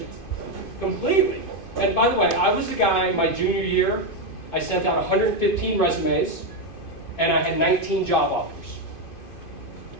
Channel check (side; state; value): right; late; 2.5 ms